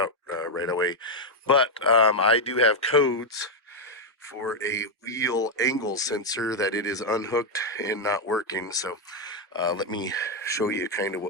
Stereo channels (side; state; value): both; normal; correlation 0.02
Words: right away. But I do have codes for a wheel angle sensor that it is unhooked and not working. So let me show you kind of